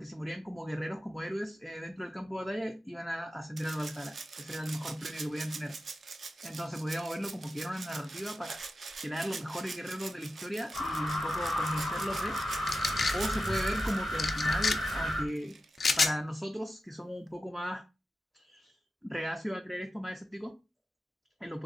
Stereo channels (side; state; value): both; normal; correlation 0.91